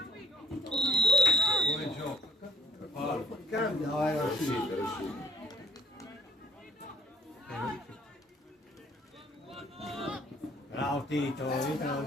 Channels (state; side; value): normal; both; correlation 0.58